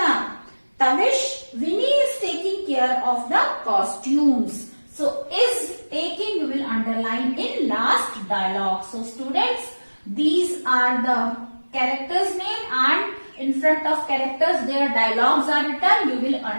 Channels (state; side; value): inverted; both; correlation -1.00